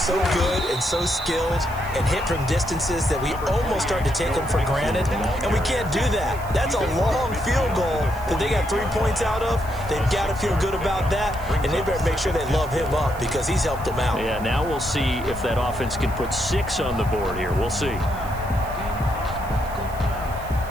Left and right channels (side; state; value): right; noise; hiss, 19 dB below the sound